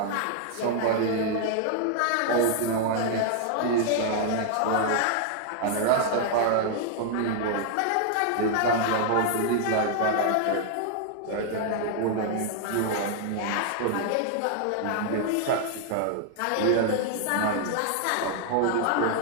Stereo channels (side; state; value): both; different; correlation 0.00